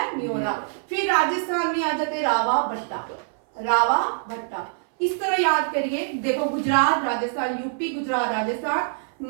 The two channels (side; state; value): left; silent; 60 dB below the other